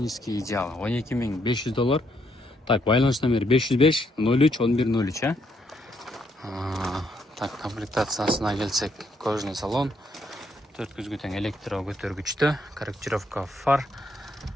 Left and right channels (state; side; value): normal; both; correlation 0.74